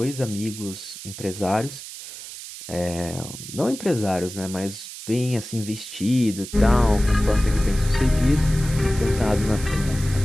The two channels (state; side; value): noise; right; hiss, 12 dB below the sound